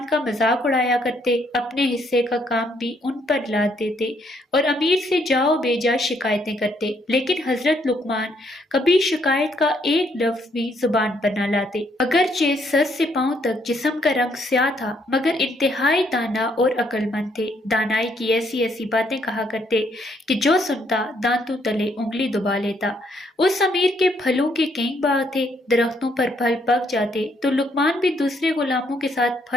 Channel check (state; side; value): normal; both; correlation 0.70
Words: का मजाक उड़ाया करते, अपने हिस्से का काम भी उन पर लाद देते और अमीर से जाओ बेजा शिकायतें करते। लेकिन हज़रत लुक़मान कभी शिकायत का एक लफ्ज़ भी ज़ुबान पर न लाते। अगरचे सर से पांव तक जिस्म का रंग स्याह था, मगर इंतहाई दाना और अक्लमंद थे। दानाई की ऐसी ऐसी बातें कहा करते कि जो सुनता दांतों तले उंगली दबा लेता। उस अमीर के फलों के कई बाग थे, दरख्तों पर फल पक जाते तो लुकमान भी दूसरे गुलामों के साथ